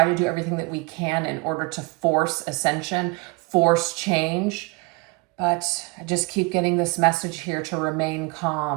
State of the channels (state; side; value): quieter; left; 26.8 dB